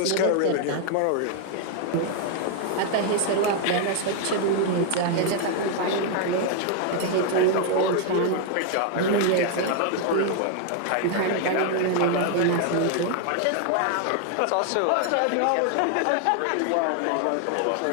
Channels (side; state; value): both; different; correlation 0.00